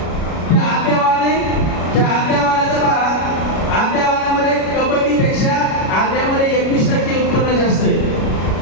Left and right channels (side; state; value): right; late; 36 ms